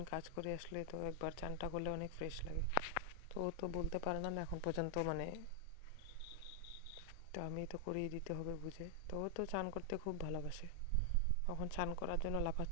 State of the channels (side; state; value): both; different; correlation 0.00